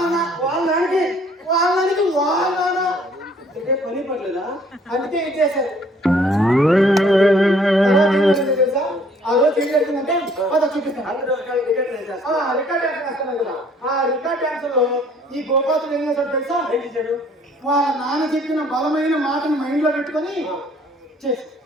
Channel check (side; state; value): both; normal; correlation 0.59